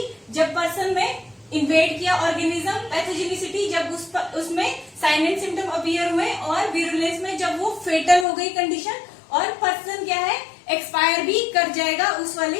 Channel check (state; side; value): drops out; right; at 8.2 s